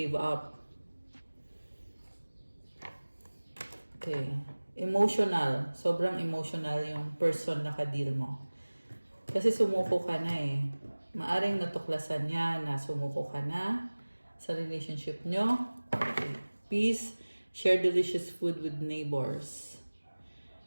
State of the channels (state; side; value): inverted; both; correlation -1.00